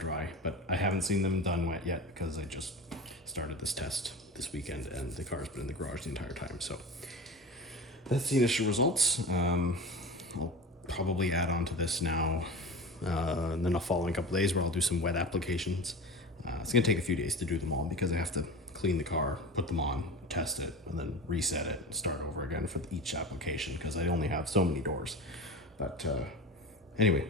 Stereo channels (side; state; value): both; normal; correlation 0.32